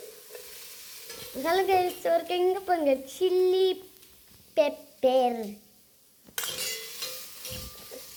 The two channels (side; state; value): both; identical; correlation 1.00